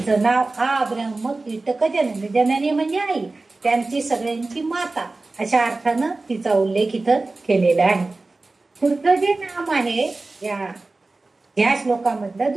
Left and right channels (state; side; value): quieter; left; 3.3 dB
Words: नाव आ ब्रह्म कीटक जननी, जननी म्हणजे आई, त्यांची सगळ्यांची माता, अशा अर्थानं तिचा उल्लेख इथं केलेला आहे. पुढचं जे नाम आहे या श्लोकामधलं